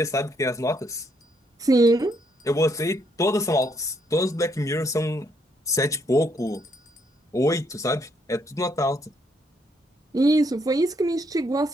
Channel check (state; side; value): normal; both; correlation 0.73